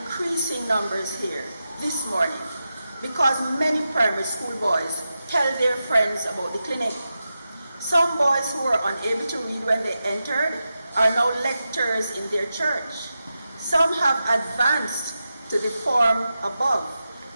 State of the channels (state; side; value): inverted; both; correlation -0.91